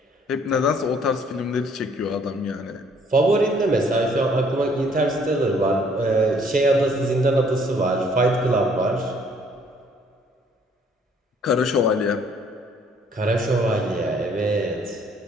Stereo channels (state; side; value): normal; both; correlation 0.61